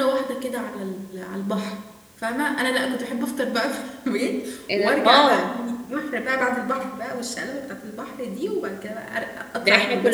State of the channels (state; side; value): identical; both; correlation 1.00